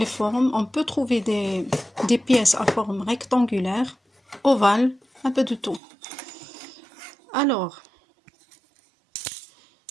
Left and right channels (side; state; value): left; drops out; at 5.8 s